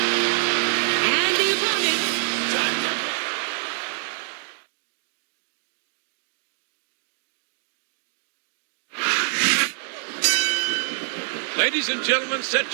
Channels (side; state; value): left; silent; digital silence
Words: And the opponent, Ladies and gentlemen, set